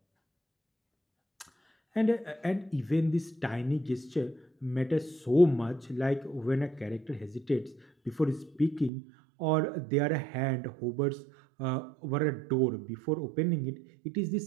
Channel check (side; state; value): left; drops out; at 8.9 s